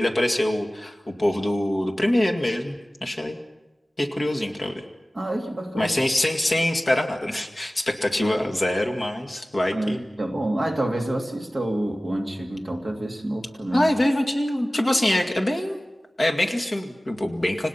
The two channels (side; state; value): both; normal; correlation 0.97